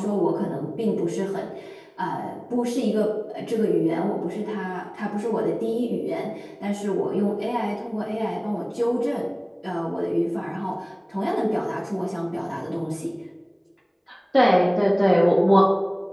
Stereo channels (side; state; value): both; identical; correlation 1.00